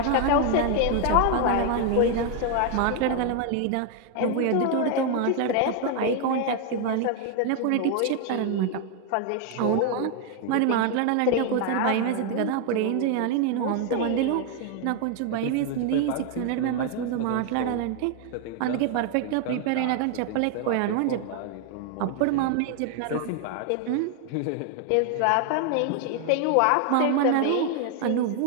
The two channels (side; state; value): both; different; correlation 0.00